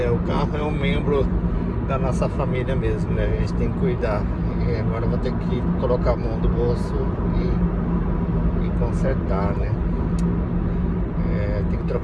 O carro é um membro da nossa família mesmo, né? A gente tem que cuidar. E agora eu vou ter que colocar a mão do bolso e consertar, né? Tem que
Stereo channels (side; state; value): both; identical; correlation 1.00